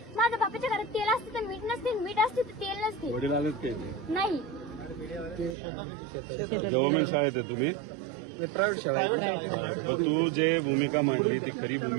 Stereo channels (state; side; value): drops out; left; at 5.6 s